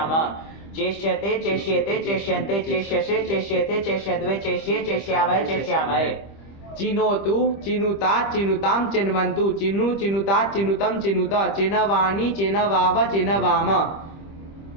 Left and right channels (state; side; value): late; right; 25 ms